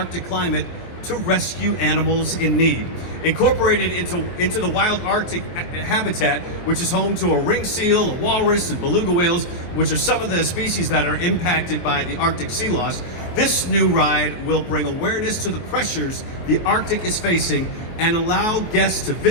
climate to rescue animals in need. Incorporated into the wild Arctic habitat, which is home to a ring seal, a walrus, and beluga whales, which are some of the species that are impacted by the Arctic sea loss, this new ride will bring awareness to the pressures the Arctic is facing and allow guests to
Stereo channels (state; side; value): late; right; 23 ms